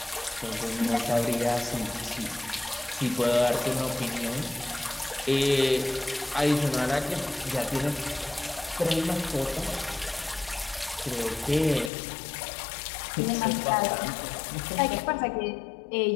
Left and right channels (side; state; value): right; drops out; at 11.9 s